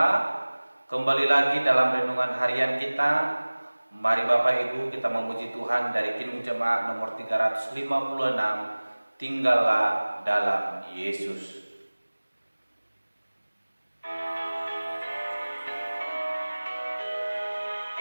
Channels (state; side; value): inverted; both; correlation -1.00